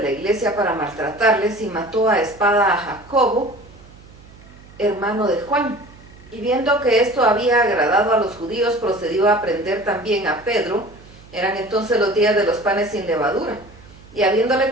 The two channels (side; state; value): right; noise; hum, 22 dB below the sound